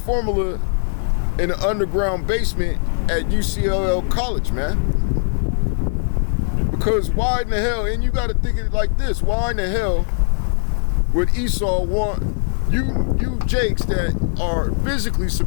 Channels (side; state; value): right; silent; digital silence